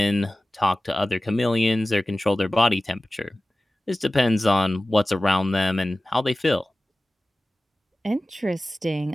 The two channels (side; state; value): both; normal; correlation 0.97